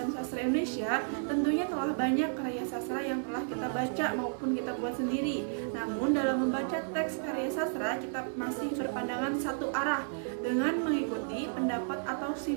Sastra Indonesia, tentunya telah banyak karya sastra yang telah kita baca maupun kita buat sendiri. Namun dalam membaca teks karya sastra, kita masih berpandangan satu arah dengan mengikuti pendapat atau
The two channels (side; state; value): left; silent; 56 dB below the other